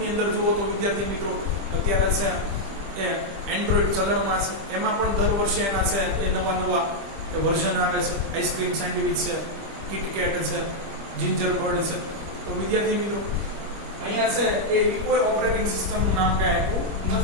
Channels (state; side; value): late; left; 25 ms